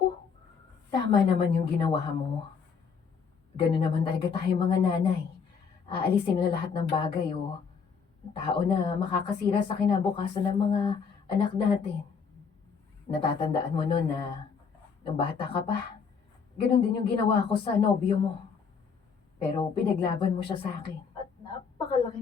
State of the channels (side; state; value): right; quieter; 6.0 dB